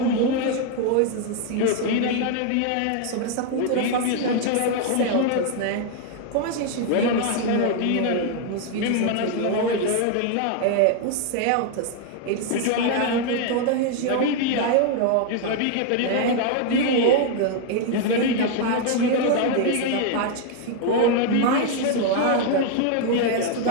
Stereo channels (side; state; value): both; different; correlation 0.01